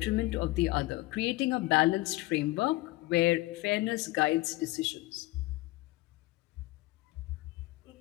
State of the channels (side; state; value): right; quieter; 20.0 dB